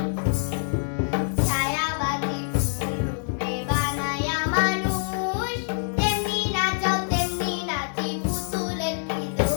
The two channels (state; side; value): silent; right; digital silence